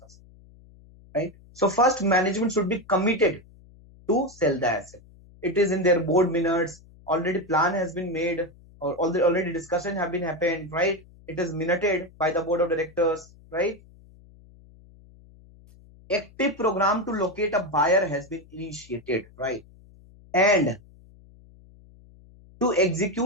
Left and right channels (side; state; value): left; noise; hum, 25 dB below the sound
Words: right? So first, management should be committed to sell the asset. It is in their board minutes, already plan has been made, or already discussion have been happened, right? It is minuted by the board of directors, right? Active program to locate a buyer has been initiated, right? And to